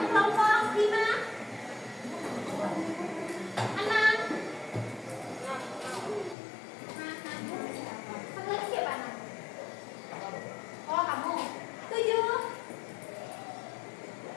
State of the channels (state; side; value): drops out; right; at 6.4 s